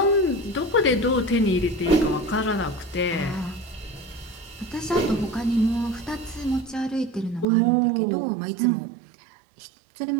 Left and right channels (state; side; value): drops out; left; at 7.5 s